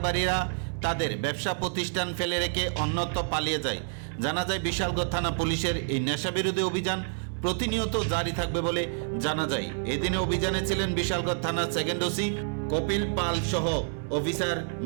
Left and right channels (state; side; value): silent; left; 59 dB below the other